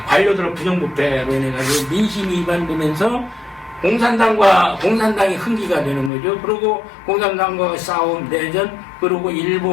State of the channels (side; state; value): right; drops out; at 6.1 s